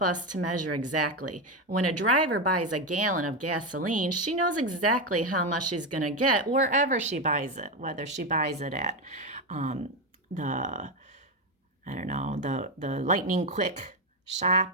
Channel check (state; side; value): normal; both; correlation 0.10